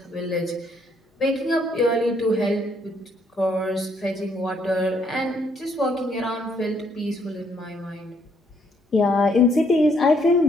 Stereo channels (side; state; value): both; normal; correlation 0.69